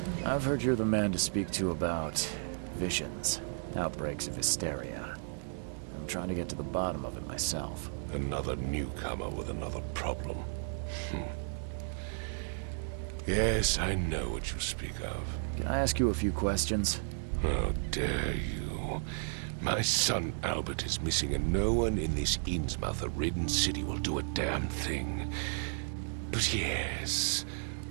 I've heard you're the man to speak to about visions, outbreaks of hysteria. I'm trying to get to the bottom of it myself. Another newcomer with another problem. Yes, I know what you speak of. Can I ask you a few questions? How dare you? My son Albert is missing, and no one in this Innsmouth-ridden city will do a damn thing. But yes,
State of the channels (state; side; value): silent; left; digital silence